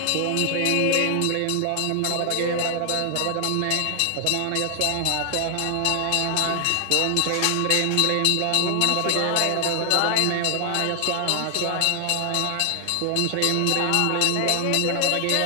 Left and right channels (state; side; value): different; both; correlation 0.00